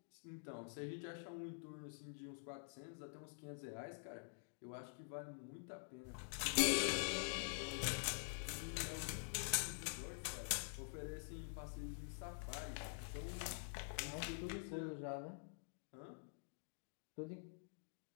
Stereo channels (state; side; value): silent; right; digital silence